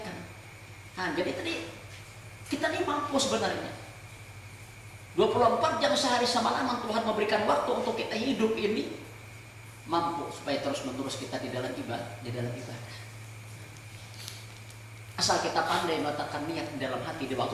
Nah, jadi tadi kita ini mampu sebenarnya 24 jam sehari semalaman Tuhan memberikan waktu untuk kita hidup ini, mampu supaya terus menerus kita di dalam ibadah. Asal kita pandai meletakkan niat di dalam hati di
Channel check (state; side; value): identical; both; correlation 1.00